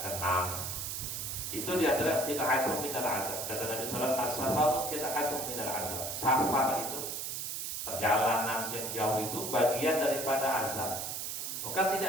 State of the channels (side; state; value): right; noise; hiss, 4 dB below the sound